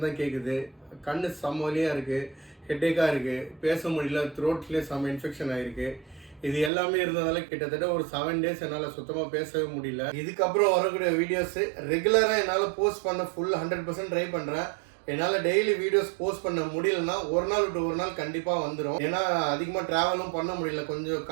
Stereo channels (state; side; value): drops out; left; at 6.7 s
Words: தான் கேட்குது. கண்ணு செம்மலியாக இருக்குது, ஹெட்டேக்காக இருக்குது, பேச முடியல, த்ரோட்லேயே செம்ம இன்ஃபெக்ஷன் ஆகிருக்கு. இது எல்லாமே இருந்ததால கிட்டத்தட்ட ஒரு 7 days என்னால் சுத்தமாக பேசவே முடியல. இதுக்கப்புறம் வரக்கூடிய வீடியோஸ் ரெகுலராக என்னால் போஸ்ட் பண்ண ஃபுல் 100% ட்ரை பண்ணுறேன். என்னால் டெய்லி வீடியோஸ் போஸ்ட் பண்ண முடியலன்னா ஒரு நாள் விட்டு ஒரு நாள் கண்டிப்பாக வந்துடும். ஏன்னா அதிகமாக ட்ராவலும் பண்ண முடியல, கொஞ்சம்